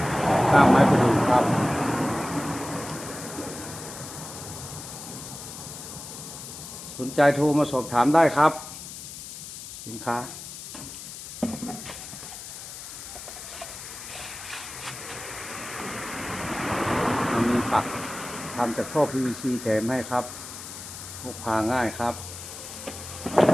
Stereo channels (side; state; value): left; noise; hiss, 11 dB below the sound